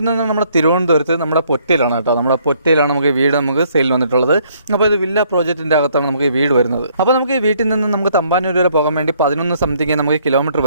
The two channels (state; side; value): inverted; both; correlation -0.66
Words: നമ്മുടെ തിരുവനന്തപുരത്ത് നമ്മുടെ പൊറ്റയിലാണ് കേട്ടോ. നമ്മുടെ പൊറ്റയിലാണ് നമുക്ക് വീട് നമുക്ക് സെയിലിന് വന്നിട്ടുള്ളത്. അപ്പോൾ ഇത് വില്ല പ്രോജക്റ്റിൻ്റെ അകത്താണ് നമുക്ക് ഈ വീട് വരുന്നത്. അപ്പോൾ നമുക്ക് ഈ വീട്ടിൽ നിന്ന് നമുക്ക് തമ്പാനൂർ വരെ പോകാൻ വേണ്ടി 11 സംതിങ് നമുക്ക് കിലോമീറ്റർ